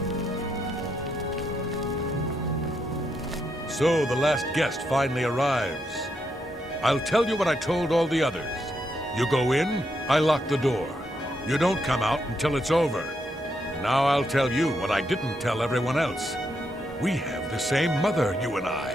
So the last guest finally arrives. I'll tell you what I told all the others. You go in, I lock the door. You don't come out until it's over. Now I'll tell you what I didn't tell everyone else. We have the same mother, you and I.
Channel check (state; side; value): normal; both; correlation 0.80